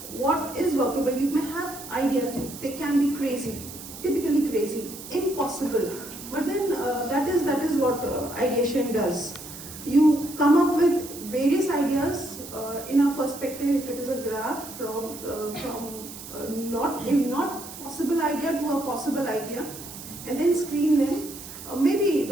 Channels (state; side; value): noise; right; hiss, 13 dB below the sound